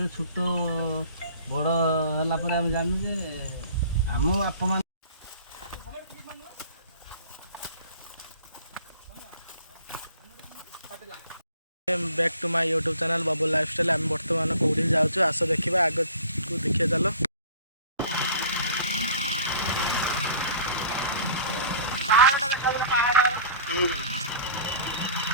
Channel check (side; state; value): both; inverted; correlation -0.47